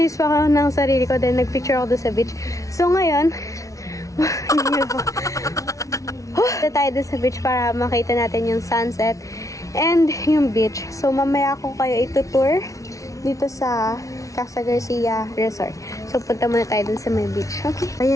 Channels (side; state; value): right; late; 0.16 ms